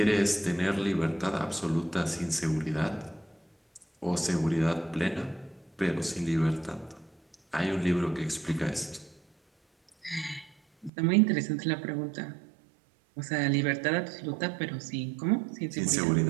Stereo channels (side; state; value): left; drops out; at 10.9 s